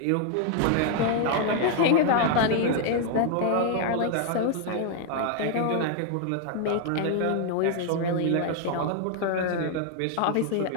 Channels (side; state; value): both; different; correlation 0.00